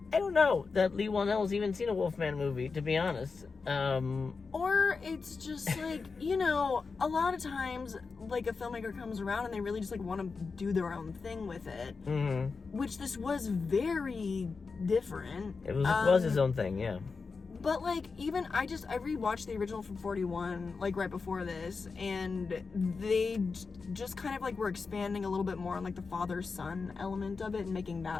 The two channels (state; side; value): quieter; right; 4.7 dB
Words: I don't know that Lee Whannell's even seen a Wolfman movie, to be honest. Or it's just like, a lot of times, like, a filmmaker comes around and they really just, like, want to do their own thing with it. Mm-hmm. Which this was very different. It was his own thing, yeah. But, like, even, I rewatched the original from 41, like, right before this, and they just kind of, like, were expanding a little bit more on, like, the father-son element of it and making